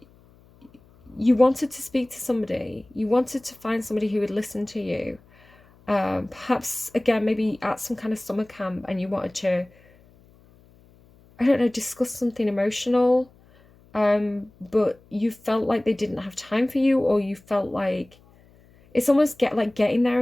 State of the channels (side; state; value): left; noise; hum, 28 dB below the sound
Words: you wanted to speak to somebody. You wanted to find somebody who would listen to you. Perhaps, again, maybe at some kind of summer camp and you wanted to, I don't know, discuss something emotional. But you felt like they didn't have time for you, or you felt like it's almost getting there